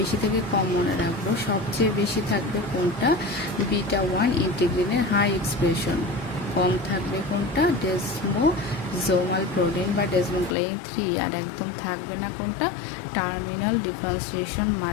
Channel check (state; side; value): drops out; right; at 10.6 s